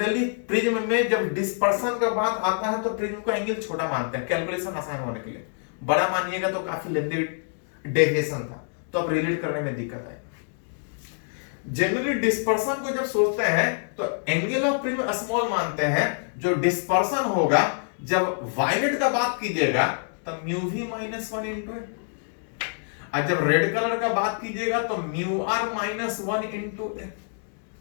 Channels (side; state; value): right; silent; 61 dB below the other